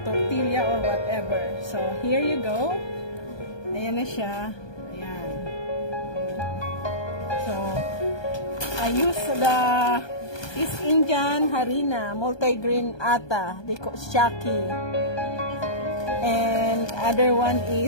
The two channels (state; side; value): late; right; 1.2 ms